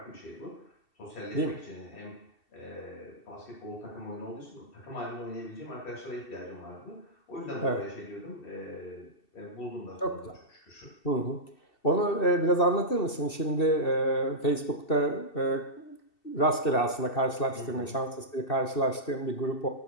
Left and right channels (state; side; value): late; right; 2.7 ms